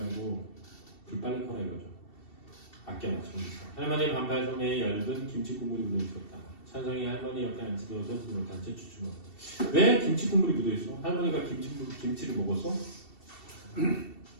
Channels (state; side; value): late; right; 2.7 ms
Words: 불 빨리 꺼라 이거죠. 아껴라 정리서. 할머니의 반팔 소매에 얇은 김치 국물이 묻어있었다. 찬성이 할머니 옆에 앉혀두어서 손을 못한 채 주춤. 왜 김치 국물이 묻어있어? 할머니가 김치를 먹었어?